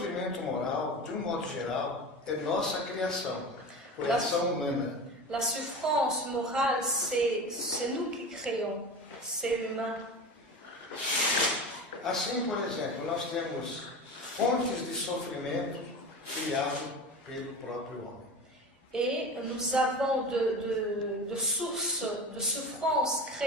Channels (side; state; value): both; normal; correlation 0.30